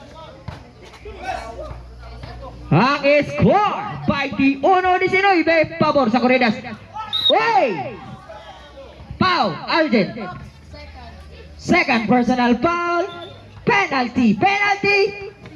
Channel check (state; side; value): identical; both; correlation 1.00